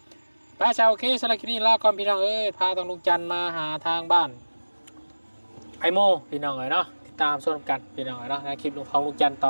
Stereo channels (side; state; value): both; inverted; correlation -1.00